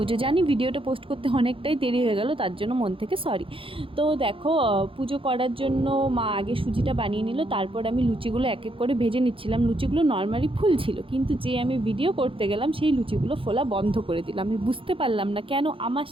জানি ভিডিওটা পোস্ট করতে অনেকটাই দেরি হয়ে গেল, তার জন্য মন থেকে সরি। তো দেখো, পুজো করার জন্য মা আগে সুজিটা বানিয়ে নিল, তারপর আমি লুচিগুলো এক এক করে ভেজে নিচ্ছিলাম। লুচিগুলো নর্মালি ফুল ছিল, কিন্তু যে আমি ভিডিও করতে গেলাম সেই লুচিগুলো ফোলা বন্ধ করে দিলাম। আমি বুঝতে পারলাম না কেন আমার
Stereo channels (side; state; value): left; late; 0.26 ms